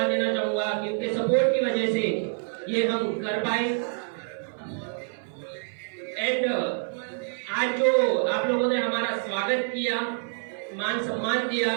देना चाहूँगा कि उनके सपोर्ट की वजह से ये हम कर पाए। एंड आज जो आप लोगों ने हमारा स्वागत किया, मान सम्मान दिया,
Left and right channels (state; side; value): silent; left; 57 dB below the other